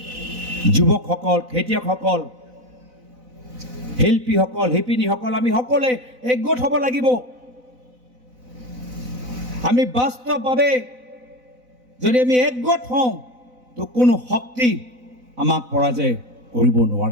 যুৱকসকল খেতিয়কসকল শিল্পীসকল শিপিনীসকল আমি সকলোৱে একগোট হ'ব লাগিব আমি বাস্তৱভাৱে যদি আমি একগোট হওঁ তো কোনো শক্তি আমাক পৰাজয় কৰিব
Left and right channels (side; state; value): left; late; 4.0 ms